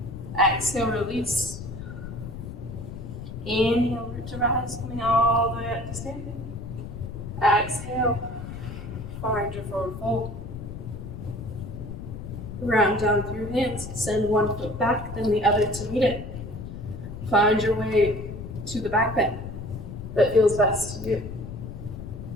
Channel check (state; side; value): noise; left; rumble, 9 dB below the sound